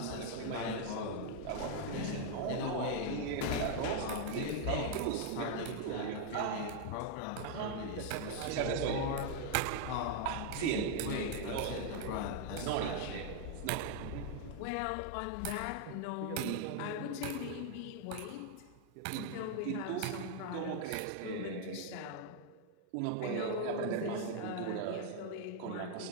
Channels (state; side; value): different; both; correlation 0.00